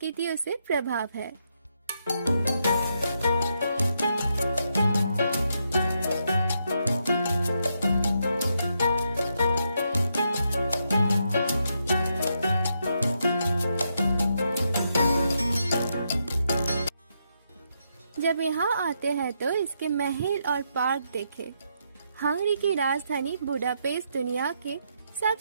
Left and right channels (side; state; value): both; inverted; correlation -0.80